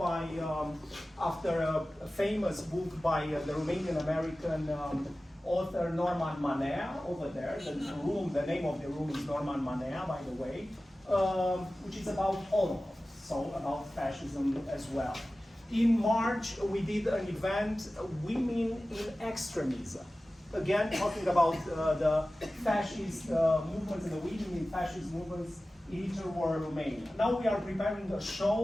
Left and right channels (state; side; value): normal; both; correlation 0.96